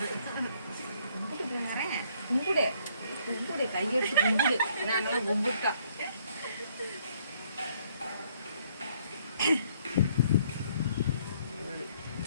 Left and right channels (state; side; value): inverted; both; correlation -0.66